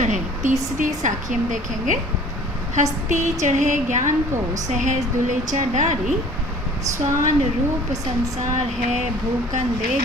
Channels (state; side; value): normal; both; correlation 0.49